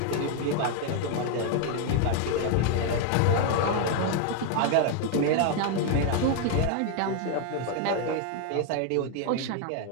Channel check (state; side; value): different; both; correlation 0.00